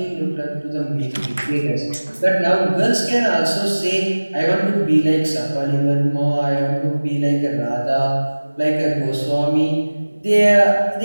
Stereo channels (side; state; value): both; inverted; correlation -1.00